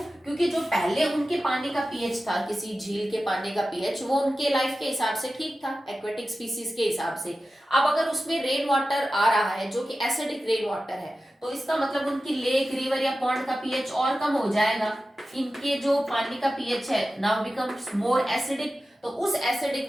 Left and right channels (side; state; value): both; normal; correlation 0.94